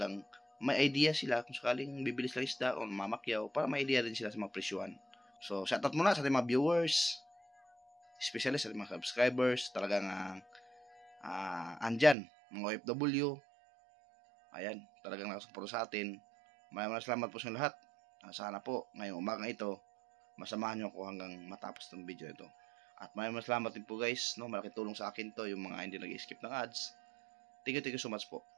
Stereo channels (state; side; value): drops out; left; at 12.2 s